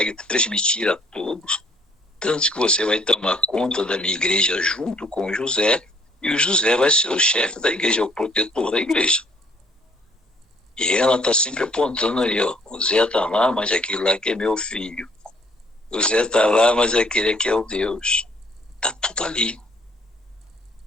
transmitir a todos, tanto que você vai tomar conta da minha igreja junto com o José, e o José vai ser o chefe da igreja, o protetor da igreja. E ela está sempre apontando ali, o Zé está lá, mas aquele lá que é meu filho. O Zé está lá, mas aquele aqui é o Deus. Está tudo ali.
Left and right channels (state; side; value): normal; both; correlation 0.62